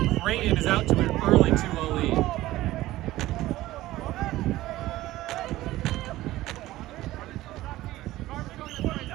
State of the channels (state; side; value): quieter; left; 16.4 dB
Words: Creighton is out to an early 2-0 lead.